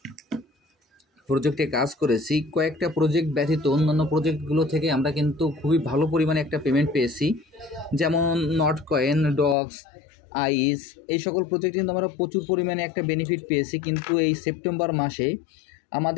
প্রজেক্টে কাজ করেছি, কয়েকটা প্রজেক্ট ব্যতীত অন্যান্য প্রজেক্টগুলো থেকে আমরা কিন্তু খুবই ভালো পরিমাণে একটা পেমেন্ট পেয়েছি। যেমন নটকয়েন, ডক্স, আইস, এই সকল প্রজেক্ট কিন্তু আমরা প্রচুর পরিমাণে একটা বেনিফিট পেয়েছি। কিন্তু এই সেপ্টেম্বর মাসে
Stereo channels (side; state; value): right; drops out; at 9.6 s